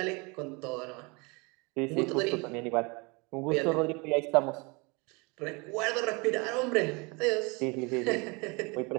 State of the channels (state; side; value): quieter; left; 28.7 dB